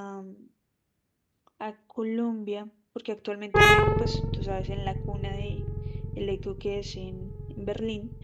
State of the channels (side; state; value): both; identical; correlation 1.00